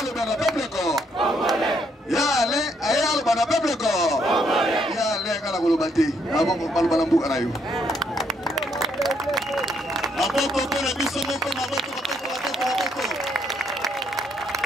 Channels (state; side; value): normal; both; correlation 0.72